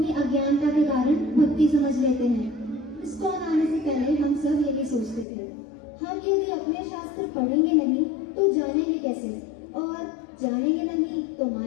अज्ञानता के कारण भक्ति समझ लेते हैं। इस्कॉन आने से पहले हम सब यही सोचते थे, हम यदि अपने शास्त्र पढ़ेंगे नहीं तो जानेंगे कैसे, और जानेंगे नहीं तो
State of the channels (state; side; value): drops out; right; at 5.2 s